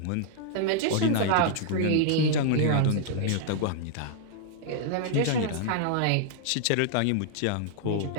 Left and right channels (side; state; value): both; different; correlation -0.01